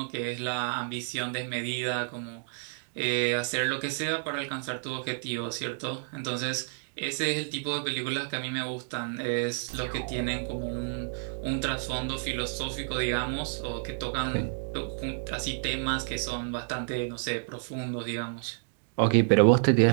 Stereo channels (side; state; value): left; silent; digital silence